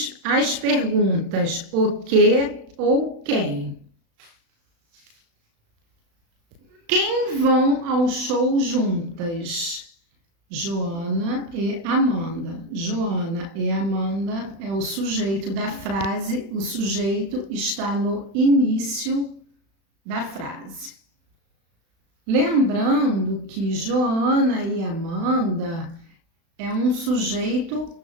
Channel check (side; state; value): left; late; 36 ms